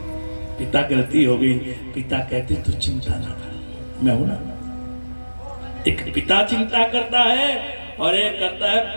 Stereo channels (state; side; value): inverted; both; correlation -1.00